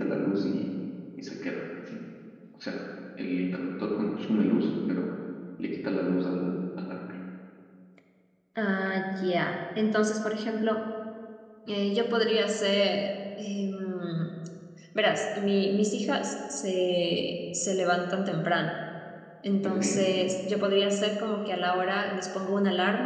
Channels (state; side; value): identical; both; correlation 1.00